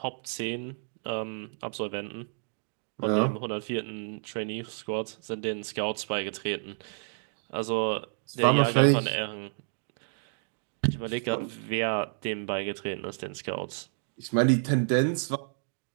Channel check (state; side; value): silent; left; digital silence